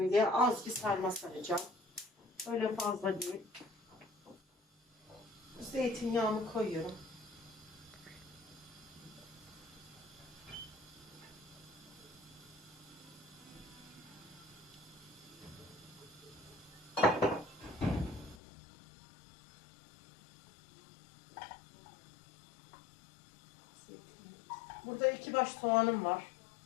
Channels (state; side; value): drops out; right; at 18.4 s